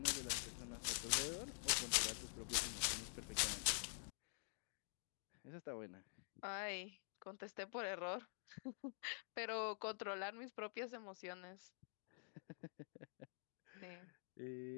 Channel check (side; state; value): right; silent; digital silence